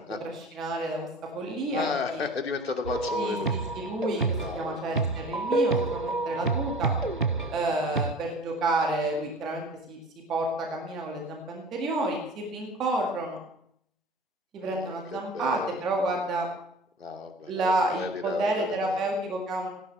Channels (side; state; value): both; normal; correlation 0.42